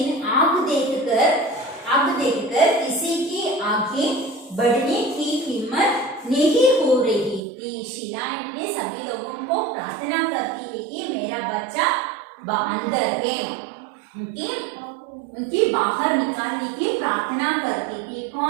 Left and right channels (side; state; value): left; drops out; at 7.4 s